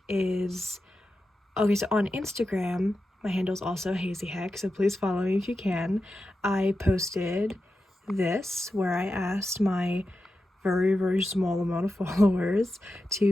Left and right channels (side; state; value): both; normal; correlation 0.90